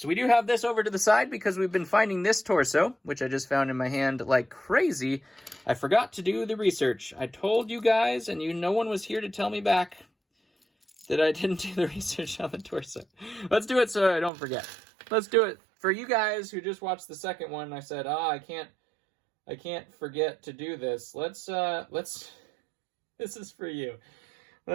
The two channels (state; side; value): drops out; left; at 14.3 s